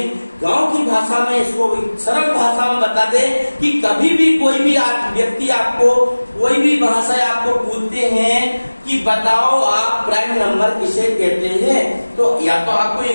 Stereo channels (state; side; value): inverted; both; correlation -1.00